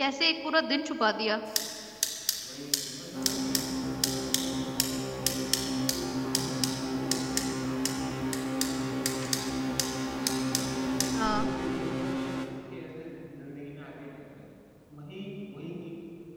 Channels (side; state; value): both; identical; correlation 1.00